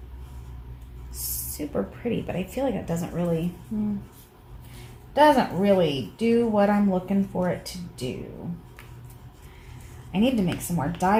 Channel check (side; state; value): both; identical; correlation 1.00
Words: super pretty, but I feel like it doesn't really do what I'm looking for it to do. I need to make some more